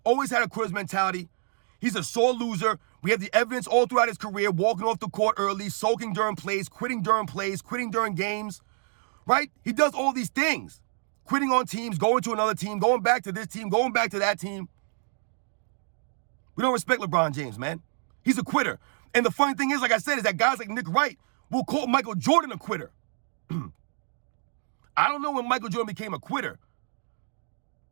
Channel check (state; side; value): silent; left; 60 dB below the other